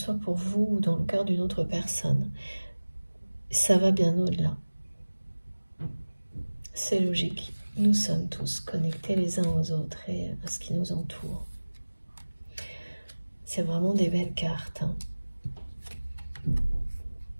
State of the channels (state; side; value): inverted; both; correlation -1.00